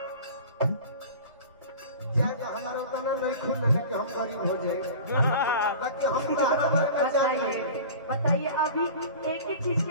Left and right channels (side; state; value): both; inverted; correlation -0.38